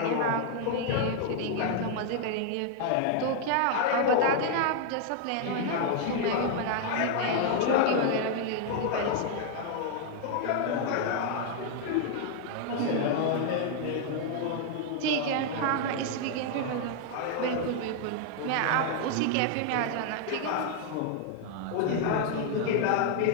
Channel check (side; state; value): both; different; correlation 0.00